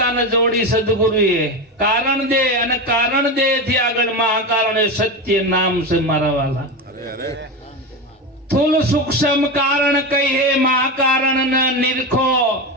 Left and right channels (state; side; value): normal; both; correlation 0.19